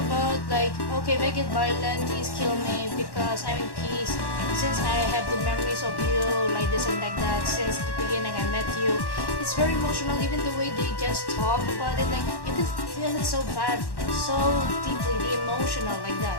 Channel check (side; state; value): right; late; 1.1 ms